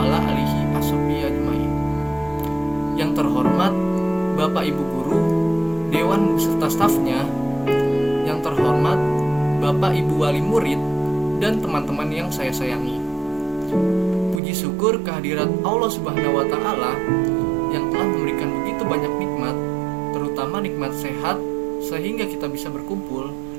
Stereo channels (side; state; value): left; drops out; at 14.4 s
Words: ala alihi washabbihi ajmain. Yang terhormat Bapak Ibu Guru, Dewan beserta stafnya. Yang terhormat Bapak Ibu Wali Murid dan teman-teman yang saya sayangi. Puji syukur kehadirat Allah Subhanahu wa Ta'ala yang telah memberikan begitu banyak nikmat, terutama nikmat sehat, sehingga kita bisa berkumpul